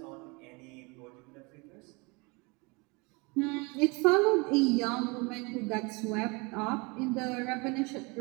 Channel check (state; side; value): quieter; left; 28.0 dB